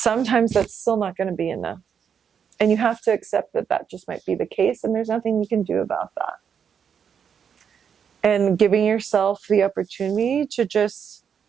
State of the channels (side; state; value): left; quieter; 7.4 dB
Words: that's still not going to be enough. And you have to accept that that just might be the case, and there's nothing you can do about that. And giving yourself the opportunity to just